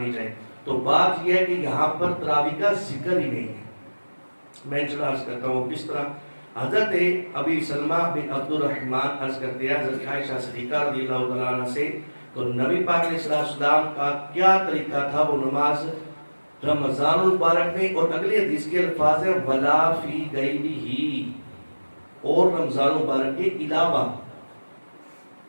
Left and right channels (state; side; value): inverted; both; correlation -1.00